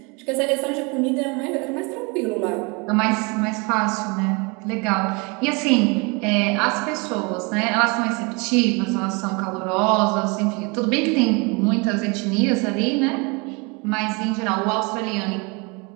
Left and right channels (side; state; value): left; quieter; 29.8 dB